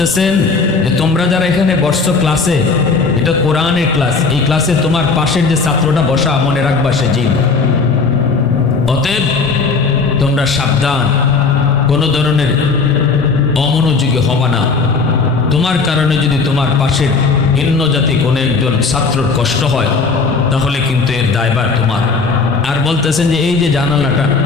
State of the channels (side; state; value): right; quieter; 4.5 dB